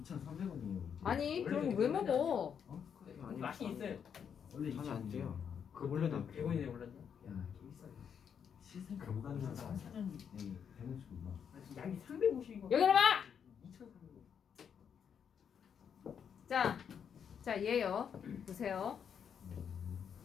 아니 원래 그럼 되게 왜 비싸지 먹어? 아니, 맛이 있어요. 원래 잠이 안 돼요. 그 원래는 원래는 100원이네 올랐나? 야, 개 비싸요. 시생 그럼 감당자 사자. 사장이 되는 줄 몰라. 양이 350이고. 여기 봐. 2,300원. 자 얘요. 보세요.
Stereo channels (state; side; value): quieter; right; 7.6 dB